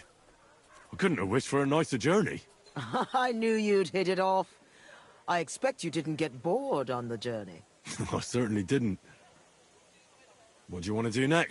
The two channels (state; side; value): identical; both; correlation 1.00